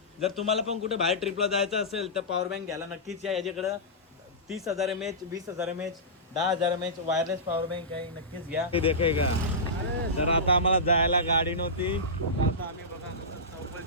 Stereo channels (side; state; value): both; normal; correlation -0.16